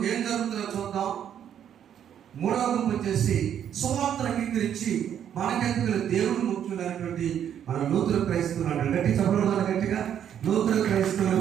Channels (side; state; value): left; quieter; 9.4 dB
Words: ఏం జరుగుతుందో చూద్దాం. మూడవ గుంపు వచ్చేసి సువార్త అంగీకరించి మనకెందుకు దేవుడు ముఖ్యమైనటువంటి మన నూతన క్రైస్తవులు అంటారు. గట్టి చెప్పడం గట్టిగా. నూతన క్రైస్తవులు